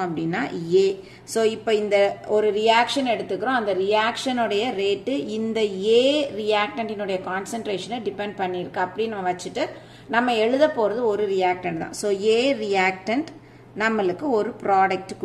அப்படின்னா A. So இப்போ இந்த ஒரு ரியாக்ஷன் எடுத்துக்கிறோம். அந்த ரியாக்ஷனுடைய ரேட்டு இந்த A ரியாக்டன்டினுடைய கான்சென்ட்ரேஷனை டிபெண்ட் பண்ணியிருக்கு அப்படின்னு நம்ம வச்சுட்டு நம்ம எழுத போறது ஒரு ரியாக்டன்ட் தான். ஸோ A ரியாக்டன்ட் நம்மளுக்கு ஒரு ப்ராடக்ட்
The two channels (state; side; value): identical; both; correlation 1.00